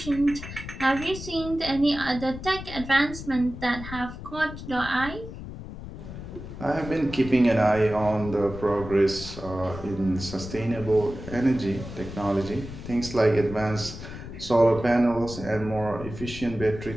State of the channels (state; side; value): noise; left; rumble, 11 dB below the sound